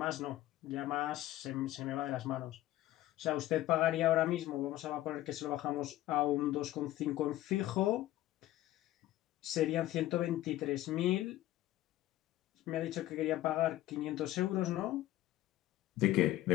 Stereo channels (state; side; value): quieter; right; 15.0 dB